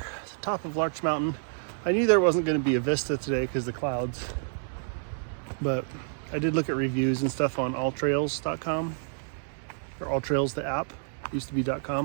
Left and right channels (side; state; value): left; silent; 59 dB below the other